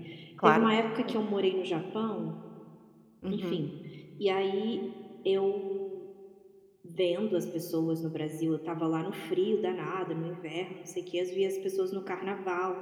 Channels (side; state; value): both; identical; correlation 1.00